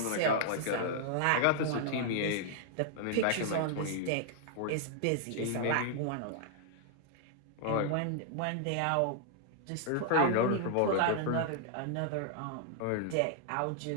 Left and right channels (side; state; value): both; different; correlation -0.01